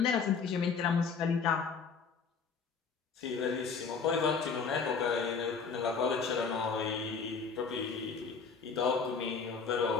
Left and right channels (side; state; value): right; quieter; 5.4 dB